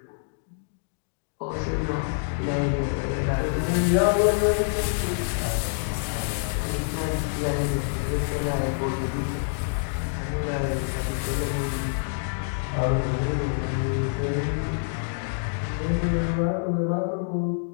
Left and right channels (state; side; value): silent; right; digital silence